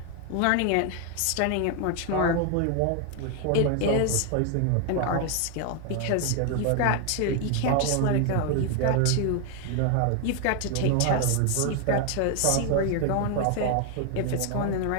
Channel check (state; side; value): different; both; correlation 0.01